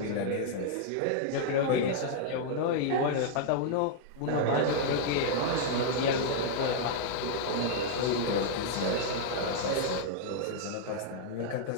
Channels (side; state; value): both; different; correlation -0.01